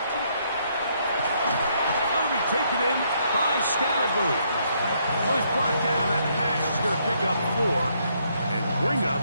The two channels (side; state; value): both; inverted; correlation -0.72